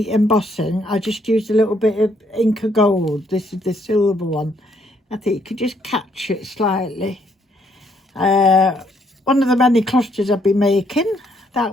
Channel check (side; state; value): both; normal; correlation 0.70